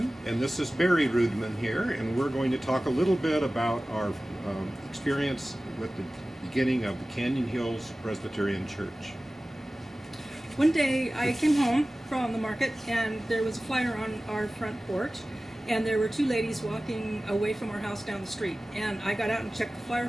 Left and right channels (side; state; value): both; normal; correlation 0.97